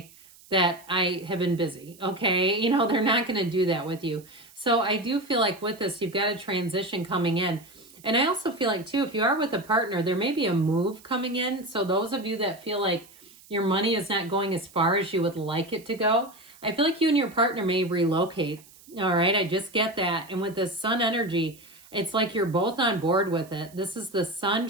that I have been busy. Okay, they're not going to do that with you. So I do feel like with this, you've got a transition coming in. And I also feel like, too, if you are with a partner, there may be a move coming in. So those of you that feel like your money is not going as far as you would like it to go, I feel like you and your partner may relocate. All right, I just get that. And with this sun energy, It's like you're both on board with it. This is the sun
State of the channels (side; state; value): right; noise; hiss, 24 dB below the sound